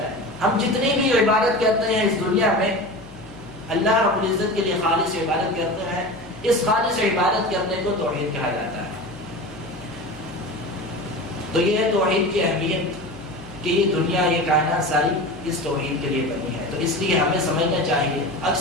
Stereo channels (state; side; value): noise; left; hum, 22 dB below the sound